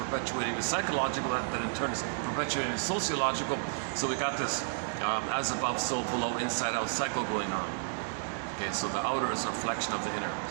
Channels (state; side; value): silent; left; 57 dB below the other